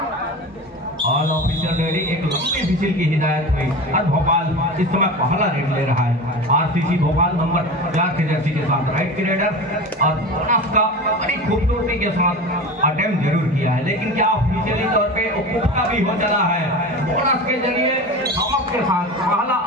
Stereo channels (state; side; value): normal; both; correlation 0.30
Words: ऑल ऑफिशियल रेडी एक लंबी विजिल की हिदायत हुई और भोपाल इस समय पहला रेड ले रहा है। आरसीसी भोपाल नंबर 4 की जर्सी के साथ राइट की रेडर और बोनस का बड़ी खूबसूरती के साथ अटेम्प्ट जरूर किया है, लेकिन क्या ऑफिशियली तौर पे उपभोक्ता भी हो चला है। बोनस के जरिए चमक के साथ पहला